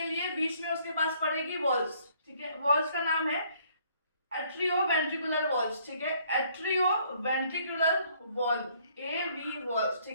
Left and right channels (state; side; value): inverted; both; correlation -0.63